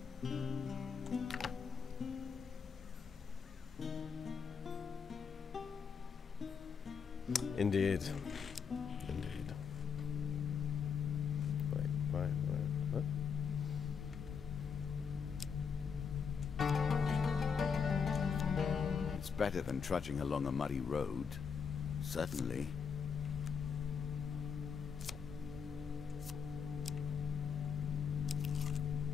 Indeed. Indeed. Wait, what? It's better than trudging along a muddy road. Certainly.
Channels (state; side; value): quieter; right; 6.4 dB